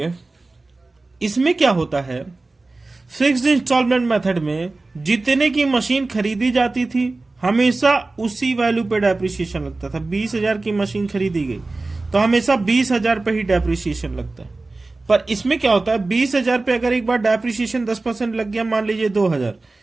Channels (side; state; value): left; quieter; 3.3 dB